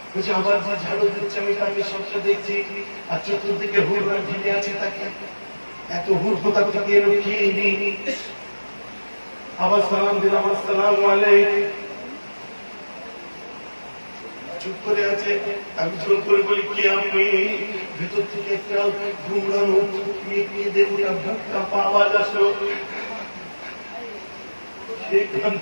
বলছে আবার যে ঝাড়ু দিচ্ছে আমি তাকে সবটা দেখছি, আর চতুর্দিকে হুড়রা ঘিরে আছে তাকে। এত হুড় কোথা থেকে এলো খেয়ে নেই। আবার সালাম দিলাম আসসালামু আলাইকুম। চুপ করে আছে। আমি জোর করে বলি কি আপনি? ভেতর থেকে একটা ঘুমড়ানো মেয়ে দেখুন বুকটা আওয়াজ আসলো।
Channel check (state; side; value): inverted; both; correlation -1.00